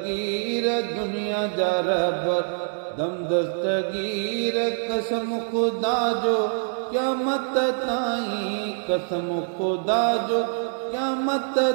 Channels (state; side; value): silent; left; 62 dB below the other